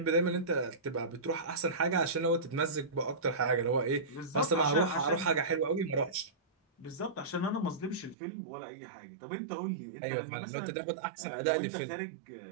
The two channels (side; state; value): left; drops out; at 8.2 s